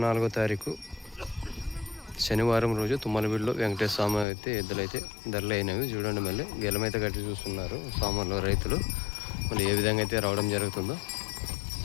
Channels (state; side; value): drops out; right; at 4.2 s